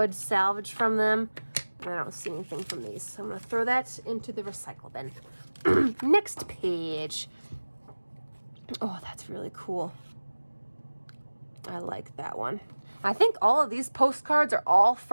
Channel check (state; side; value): inverted; both; correlation -1.00